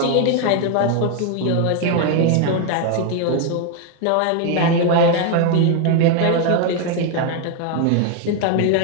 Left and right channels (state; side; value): different; both; correlation 0.01